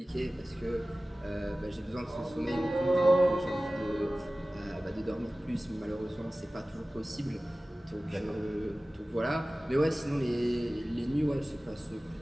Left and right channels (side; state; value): both; normal; correlation 0.97